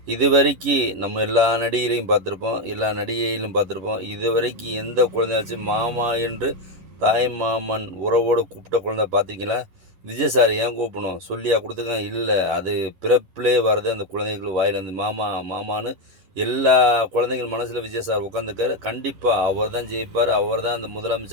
இதுவரைக்கும் நம்ம எல்லா நடிகரையும் பார்த்துருப்போம், எல்லா நடிகையிலும் பார்த்துருப்போம். இதுவரைக்கும் எந்த குழந்தையாச்சும் மாமா என்று தாய் மாமன் உறவோடு கூப்பிட்ட குழந்தை பார்த்தீங்களா? விஜய் சார் ஏன் கூப்பிடணும் சொல்லியா கொடுத்துருக்காங்க? இல்லை, அது பிறப்பிலே வர்றது அந்த குழந்தைகள் வாயிலேருந்து மாமா மாமான்னு எல்லா குழந்தைகள் மனசில் விஜய் சார் உட்காந்துருக்காரு. கண்டிப்பாக அவர் தான் ஜெயிப்பார், அவர் தான் அந்த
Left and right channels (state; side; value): late; left; 11 ms